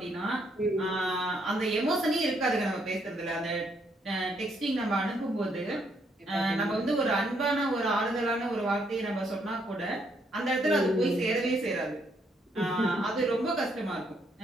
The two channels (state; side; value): normal; both; correlation 0.73